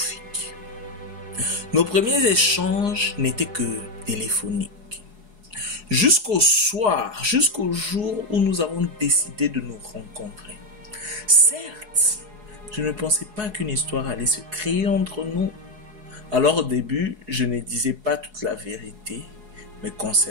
Nos premiers échanges n'étaient que téléphoniques. Jusqu'au soir, jusqu'au jour où nous avons décidé de nous rencontrer. Certes, je ne pensais pas qu'une histoire allait se créer entre nous. Alors au début, je ne disais pas toute la vérité me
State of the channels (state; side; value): late; left; 4.7 ms